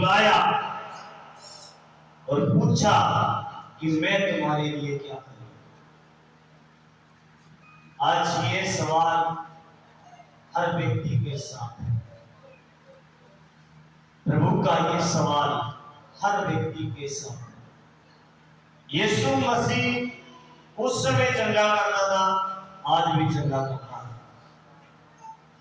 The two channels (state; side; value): identical; both; correlation 1.00